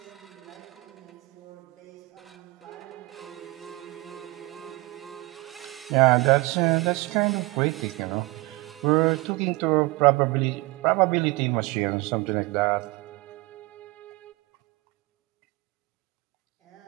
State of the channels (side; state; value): left; quieter; 22.9 dB